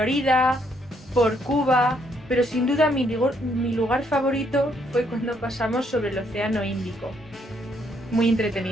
por Cuba, pero sin duda mi lugar favorito fue cuando pasamos sobre el Océano Índico. Muy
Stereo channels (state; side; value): normal; both; correlation 0.72